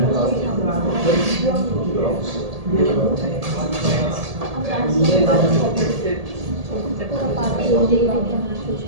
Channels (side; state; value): left; late; 1.7 ms